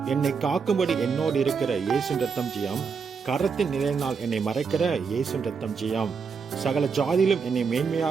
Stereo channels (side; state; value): left; quieter; 5.6 dB